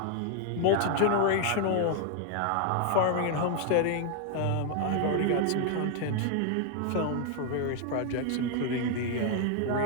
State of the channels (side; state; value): both; different; correlation 0.00